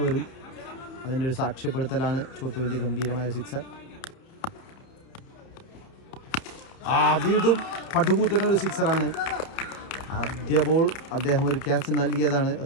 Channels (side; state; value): right; late; 30 ms